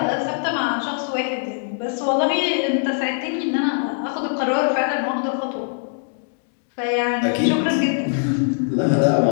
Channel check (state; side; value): silent; right; digital silence